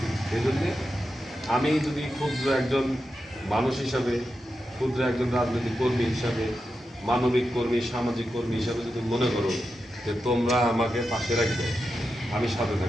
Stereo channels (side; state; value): both; normal; correlation 0.89